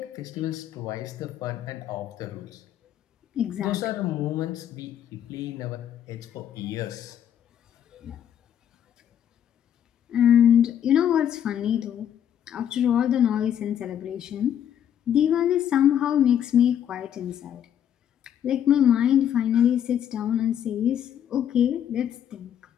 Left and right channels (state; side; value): quieter; right; 9.7 dB